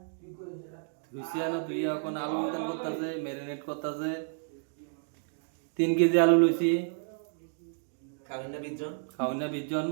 তুই করিস এটা লুচিয়ানো তুই এখন আলু উতান করতেছে, ম্যারিনেট করতেছে। 3 কেজি আলু লইছি, খাবেন না বিজন খাওয়াই না 20 জন।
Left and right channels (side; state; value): left; silent; digital silence